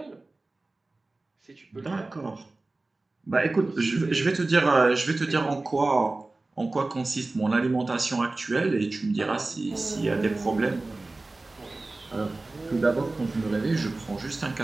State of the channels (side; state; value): left; quieter; 3.1 dB